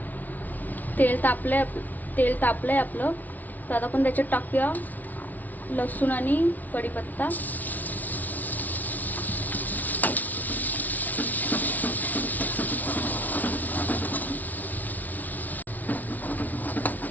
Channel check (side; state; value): right; late; 0.078 ms